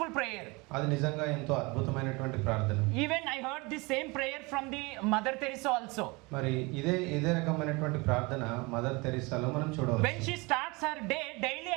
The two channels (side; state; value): left; quieter; 26.0 dB